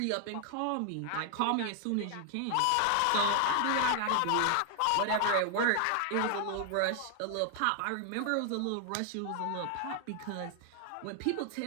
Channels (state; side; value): different; both; correlation 0.00